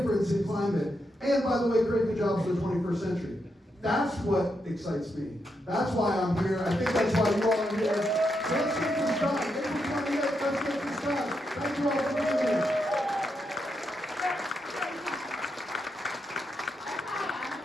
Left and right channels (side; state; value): both; normal; correlation 0.82